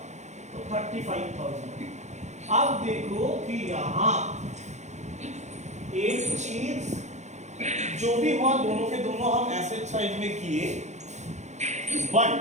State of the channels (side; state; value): left; late; 0.33 ms